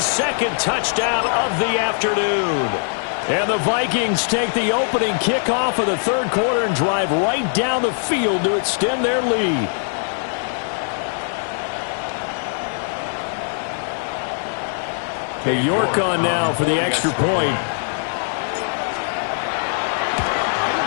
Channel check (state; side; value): silent; right; digital silence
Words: second touchdown of the afternoon. And the Vikings take the opening kickoff of the third quarter and drive right down the field to extend their lead. Okay, York on now for the extra point.